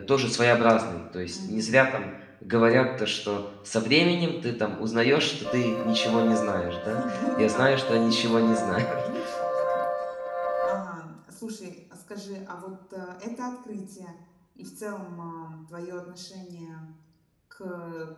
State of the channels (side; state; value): both; identical; correlation 1.00